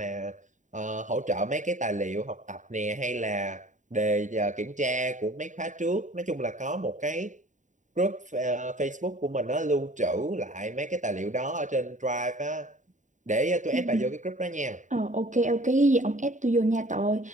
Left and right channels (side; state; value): left; late; 0.36 ms